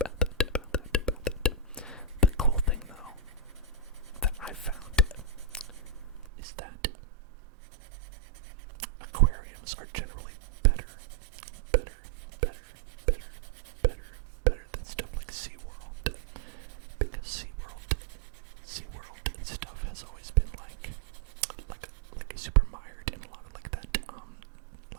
The cool thing though that I found is that aquariums are generally better than stuff like SeaWorld. Because SeaWorld and stuff has always been like super mired in a lot of like that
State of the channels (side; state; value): left; drops out; at 6.2 s